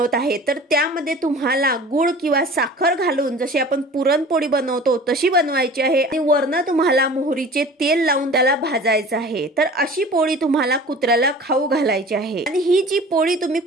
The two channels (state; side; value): normal; both; correlation 0.42